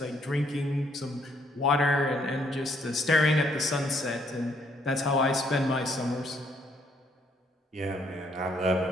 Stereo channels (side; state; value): both; normal; correlation 0.69